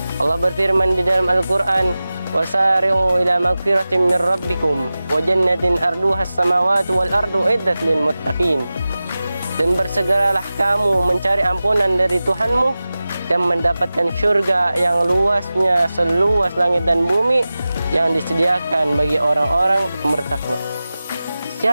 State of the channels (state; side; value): inverted; both; correlation -0.96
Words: Allah berfirman di dalam Al-Quran, wasari'u ila magfiratin min rabbikum wa jannatin arduha as-samawati wal ardu iddat lil muttaqin. Dan bersegeralah kamu mencari ampunan dari Tuhanmu dan mendapatkan syurga yang luasnya seluas langit dan bumi yang disediakan bagi orang-orang yang bertakwa.